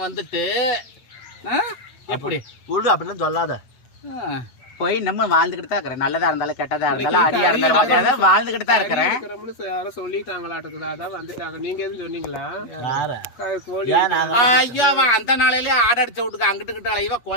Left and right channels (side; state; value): right; late; 8.3 ms